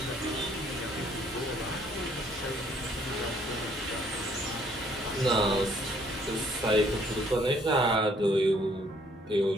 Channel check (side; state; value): both; normal; correlation 0.63